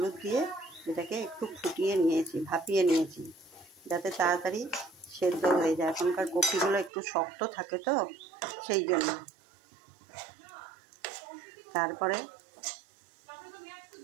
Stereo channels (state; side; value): drops out; left; at 6.9 s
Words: দিয়ে এটাকে একটু ফুটিয়ে নিয়েছি, ভাপিয়ে নিয়েছি, যাতে তাড়াতাড়ি সেদ্ধ হয়ে যায়। এখনকার কপিগুলো একটু শক্ত থাকে তো, সেই জন্য। তারপরে